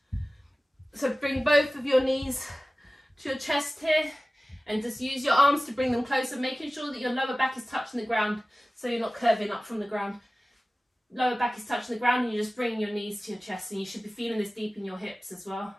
So bring both of your knees to your chest here and just use your arms to bring them closer, making sure that your lower back is touching the ground so you're not curving up from the ground. Lower back is touching the ground and you're just bringing your knees to your chest, and you should be feeling this deep in your hips as well.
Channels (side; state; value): both; normal; correlation 0.97